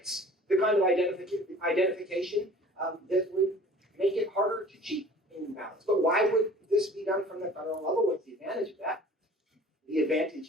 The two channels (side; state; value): both; normal; correlation 0.47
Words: the kind of identification that would make it harder to cheat in ballots. But why would this be done from the federal level? What's the advantage of that? The